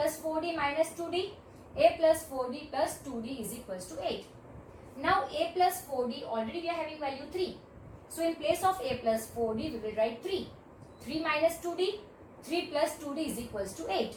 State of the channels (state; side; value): identical; both; correlation 1.00